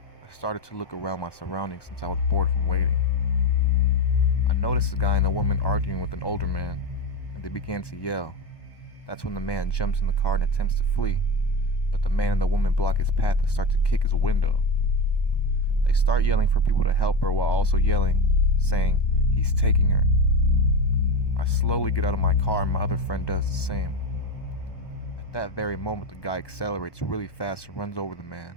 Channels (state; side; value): late; right; 1.2 ms